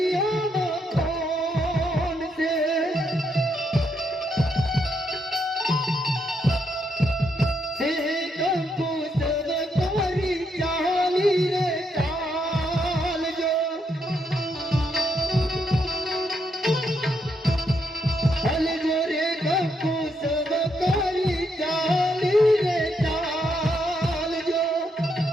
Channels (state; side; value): normal; both; correlation 0.77